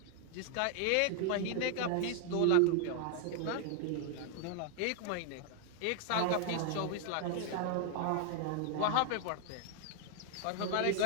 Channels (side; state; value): both; different; correlation 0.00